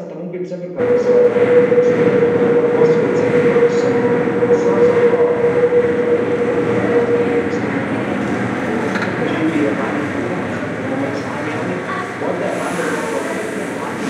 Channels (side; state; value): both; identical; correlation 1.00